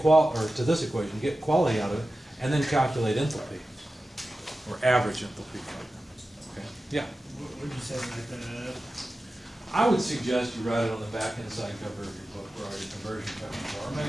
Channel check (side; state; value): both; normal; correlation 0.94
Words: out of it, and then calculate enthalpy, or average enthalpy. Okay? Yeah? What would you say like that? I would suggest you write it on the back inside cover of your book where all your conversion factors are, or